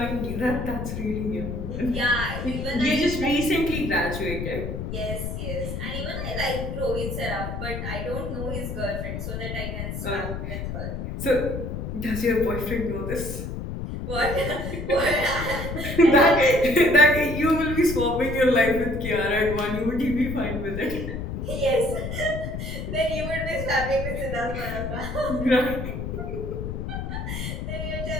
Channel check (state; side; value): noise; left; rumble, 5 dB below the sound